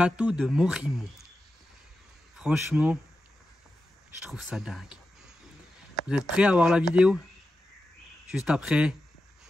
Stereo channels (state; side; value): normal; both; correlation 0.91